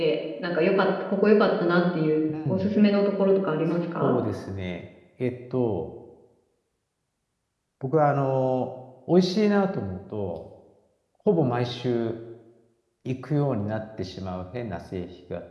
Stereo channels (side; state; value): both; identical; correlation 1.00